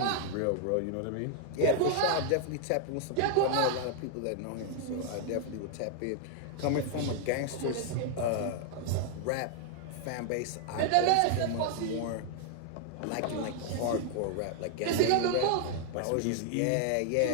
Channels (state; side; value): different; both; correlation 0.00